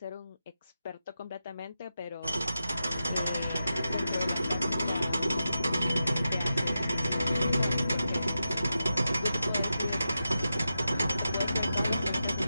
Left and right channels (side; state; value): both; inverted; correlation -0.90